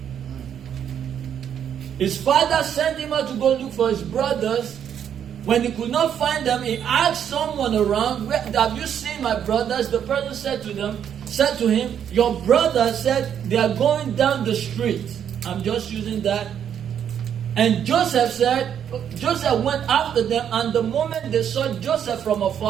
His father sent him out to go look for his brothers. When he could not find them, he asked someone around, "Have you seen my brothers?" The person said to him, "Your brother said they are going down the street." I'm just using that. And Joseph went after them, and the moment they saw Joseph from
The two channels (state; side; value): quieter; left; 8.9 dB